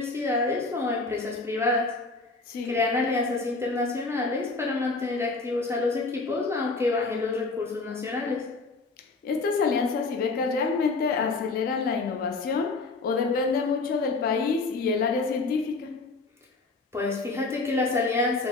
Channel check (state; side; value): quieter; right; 3.7 dB